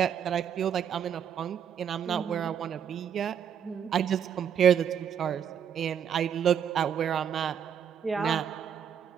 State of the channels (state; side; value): quieter; left; 8.4 dB